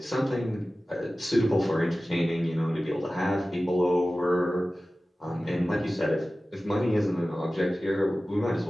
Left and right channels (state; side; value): normal; both; correlation 0.96